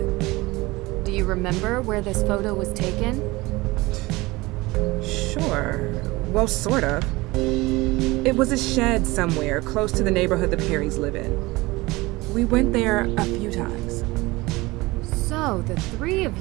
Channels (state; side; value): quieter; left; 21.4 dB